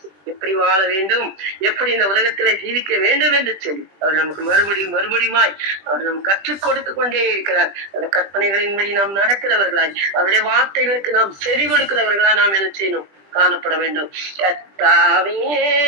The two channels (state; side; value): late; left; 20 ms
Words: எப்படி வாழ வேண்டும், எப்படி இந்த உலகத்துல ஜீவிக்க வேண்டும் என்று சொல்லி அவர் நமக்கு மறுபடியுமாய் அவர் நமக்கு கற்றுக் கொடுத்து கொண்டே இருக்கிறார். அந்த கற்பனைகளின்படி நாம் நடக்கிறவர்களாய், அவருடைய வார்த்தைகளுக்கு நாம் செவி கொடுக்கிறவர்களா நாம் என்ன செய்யணும், காணப்பட வேண்டும். கர்த்தாவே